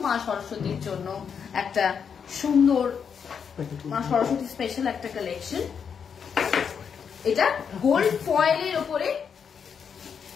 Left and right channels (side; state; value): right; quieter; 6.9 dB